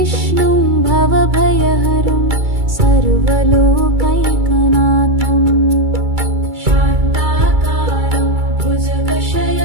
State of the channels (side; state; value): left; late; 2.3 ms